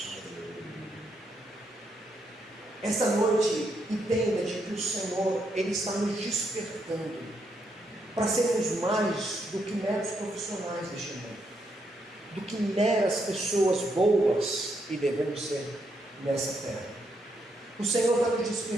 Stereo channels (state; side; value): normal; both; correlation 0.78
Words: Essa noite, entenda de que o Senhor, Ele está nos despertando para sermos mais do que meros profissionais deste mundo, do que meras pessoas boas, e devemos ser nessa terra. O Senhor está nos